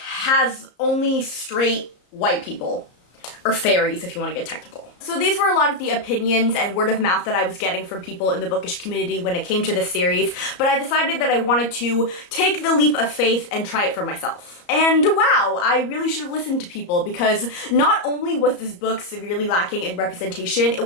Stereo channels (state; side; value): late; right; 34 ms